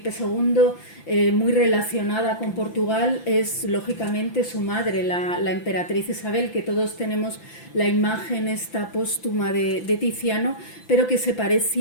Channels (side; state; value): right; late; 5.9 ms